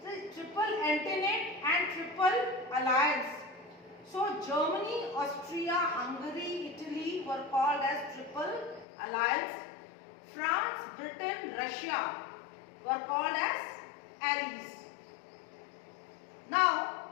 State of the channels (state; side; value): drops out; right; at 8.8 s